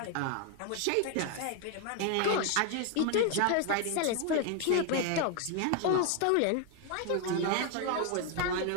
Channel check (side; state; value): both; different; correlation 0.01